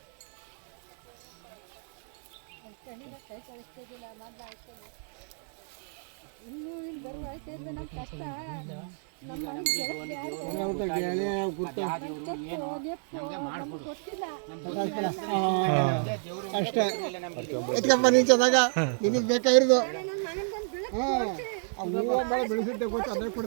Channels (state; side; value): silent; left; digital silence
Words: ಅಷ್ಟೇ ಎತ್ಕಪ್ಪ ನೀನು ಚೆನ್ನಾಗ ನಿನಗೆ ಬೇಕಾಗಿರೋದು. ಬೆಳೆಸುತ್ತೆ ಗೊತ್ತು ಅದೇ